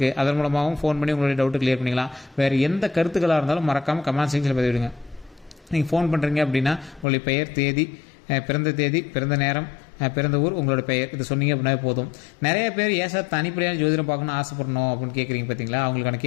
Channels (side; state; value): right; drops out; at 7.1 s